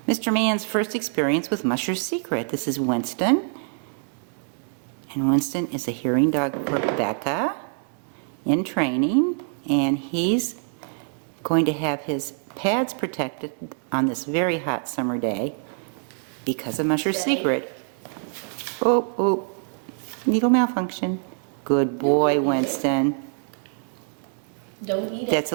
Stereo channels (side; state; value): left; silent; 62 dB below the other